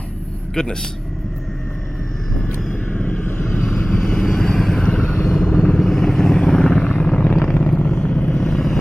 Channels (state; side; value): normal; both; correlation 0.98